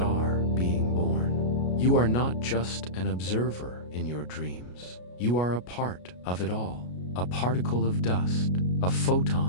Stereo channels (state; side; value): late; right; 33 ms